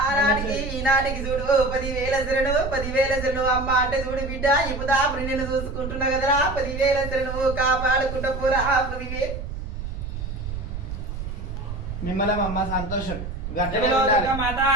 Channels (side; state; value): right; noise; rumble, 7 dB below the sound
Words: ఆనాటికి ఈనాటికి చూడు 10,000 శరణు 10,000 శరణు అమ్మ అంటే చూడు బిడ్డ ఇప్పుడు అప్పుడు నేను చూసుకుంటున్నా కదరా 10,000 శరణు కాపాడుకుంటా పూరా 10,000. మిమ్మల్ని అమ్మ సంతోషం గట్టిగా